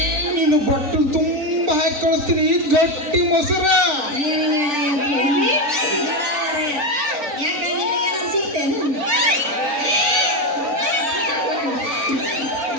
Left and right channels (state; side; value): late; left; 3.9 ms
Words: ನೀನು ಬಟ್ಟಲು ತುಂಬ ಹಾಕಿ ಕಳಿಸ್ತೀನಿ. ಗಟ್ಟಿ